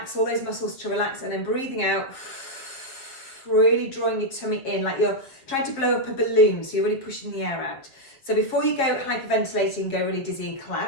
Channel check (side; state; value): right; late; 7.4 ms